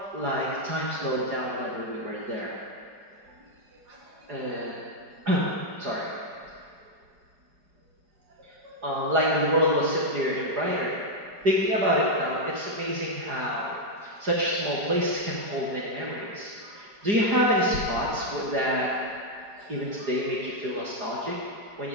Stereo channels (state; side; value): late; left; 4.8 ms